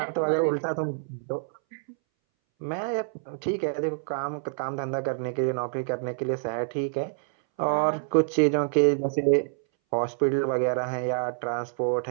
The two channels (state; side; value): silent; left; 60 dB below the other